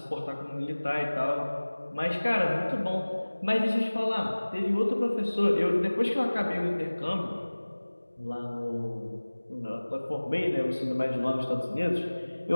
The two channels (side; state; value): both; inverted; correlation -1.00